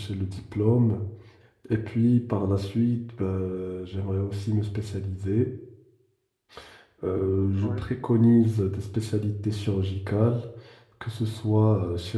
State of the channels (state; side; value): identical; both; correlation 1.00